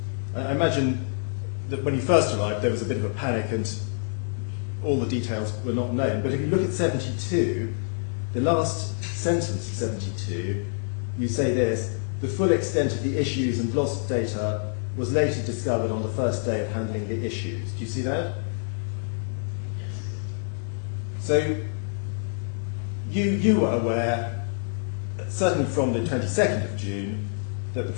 I imagine that when you first arrived there was a bit of a panic and all the details were not known. But if you look at 72, the last sentence of 72, you say this: the full extent of the issues and lost data was later discovered on the first day of handling the issues. Do you see that? So you were aware, certainly from the 22nd of June, that the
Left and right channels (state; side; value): silent; right; digital silence